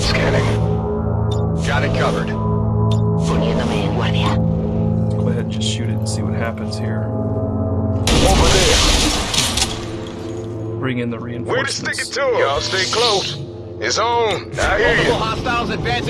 Scanning. Got it covered. Poniéndome en guardia. Go ahead and just shoot it and see what happens here. Over there. Bring in the Way to reinforcements. stick it to him. Y'all stay close. It's on. I hear you. Hostiles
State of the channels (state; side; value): identical; both; correlation 1.00